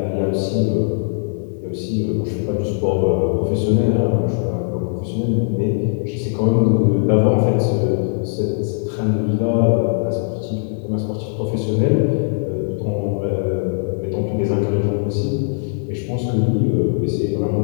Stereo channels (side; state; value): right; silent; digital silence